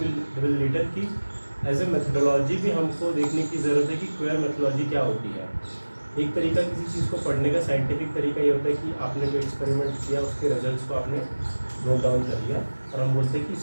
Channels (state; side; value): inverted; both; correlation -1.00